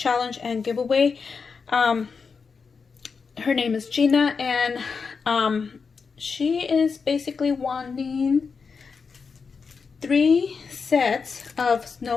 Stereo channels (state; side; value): quieter; right; 5.3 dB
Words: and giveaway. Her name is Gina, and she is basically wanting 3 sets of